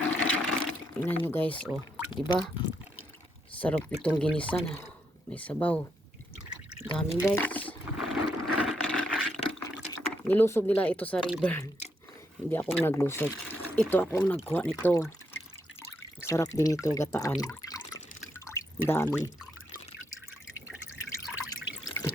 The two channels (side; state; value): both; normal; correlation 0.78